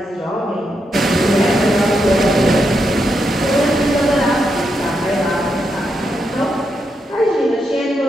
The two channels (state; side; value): normal; both; correlation 0.83